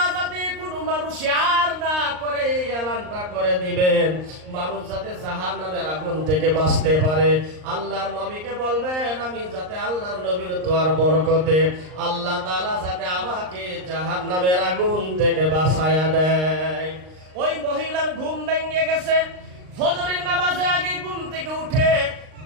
যাতে কোনো মানুষ আর না করে এই এলানটা করে দিবেন, মানুষ যাতে জাহান্নামের আগুন থেকে বাঁচতে পারে। আল্লাহর নবীকে বলবেন আমি যাতে আল্লাহর নবীর দোয়ার বরকতে আল্লাহ তাআলা যাতে আমাকে জাহান্নামের আগুন থেকে বাঁচায়া দেয়। ওই মহিলার ঘুম ভেঙে গেছে, ফজরের নামাজের আগে ঘুম থেকে উঠে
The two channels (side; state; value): left; late; 39 ms